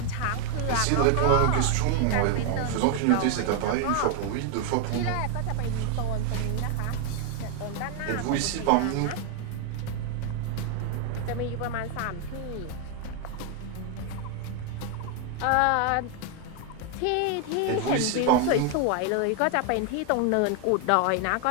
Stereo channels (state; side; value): different; both; correlation 0.00